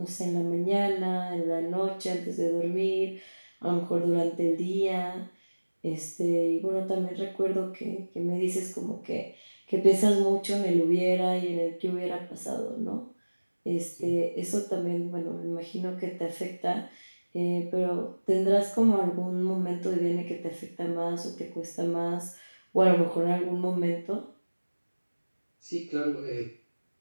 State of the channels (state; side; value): inverted; both; correlation -1.00